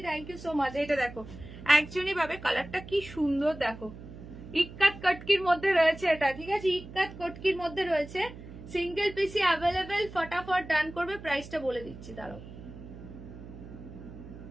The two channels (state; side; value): noise; right; hum, 15 dB below the sound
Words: thank you so much. এটা দেখো, একজনই পাবে। কালারটা কি সুন্দর দেখো, ইক্কাত কটকির মধ্যে রয়েছে এটা, ঠিক আছে, ইক্কাত কটকির মধ্যে রয়েছে, সিঙ্গেল পিসি অ্যাভেলেবেল, ফটাফট ডান করবে। প্রাইসটা বলে দিচ্ছি, দাঁড়াও